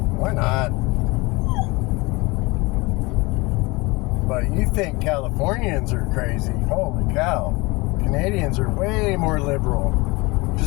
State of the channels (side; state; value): right; quieter; 24.2 dB